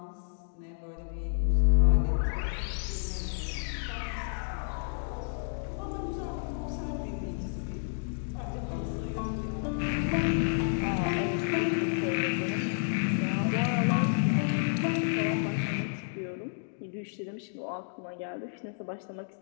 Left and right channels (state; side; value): silent; right; digital silence